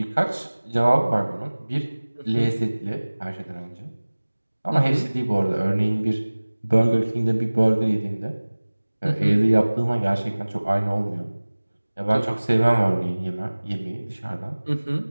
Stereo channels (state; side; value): inverted; both; correlation -1.00